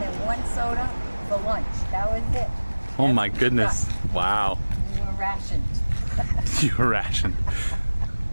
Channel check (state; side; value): inverted; both; correlation -1.00